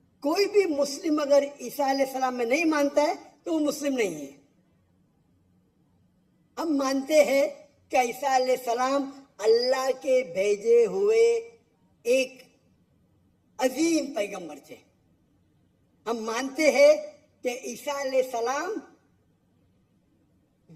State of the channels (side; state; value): both; identical; correlation 1.00